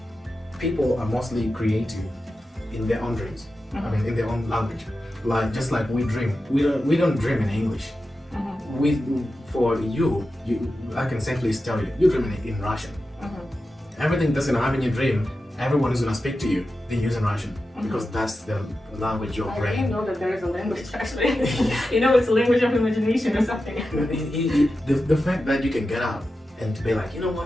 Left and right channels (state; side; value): normal; both; correlation 0.91